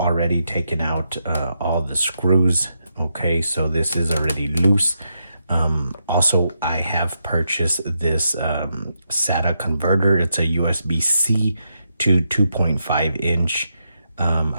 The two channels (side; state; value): both; inverted; correlation -0.83